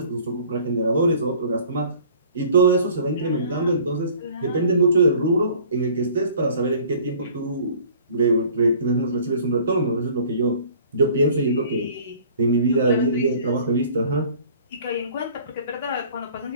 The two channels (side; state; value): both; inverted; correlation -0.51